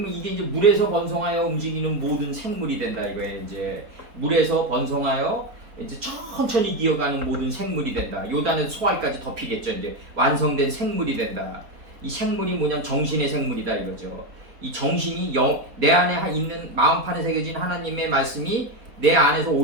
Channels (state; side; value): late; left; 4.2 ms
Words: 이게 이제 물에서 번성하여 움직이는 모든 생물이 된다 이거예요. 이제 물에서 번성하여 이제 천천히 기어가는 모든 생물이 된다. 요단에서 소알까지 덮이겠죠. 이제 완성된 생물이 된다. 이 생물이 뭐냐면 정신의 생물이다 이거죠. 이 정신이 내 안에 있는 마음판에 새겨진 하나님의 말씀이 내 안에서